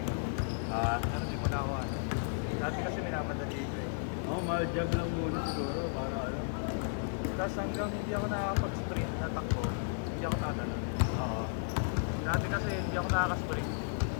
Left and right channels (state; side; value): silent; right; digital silence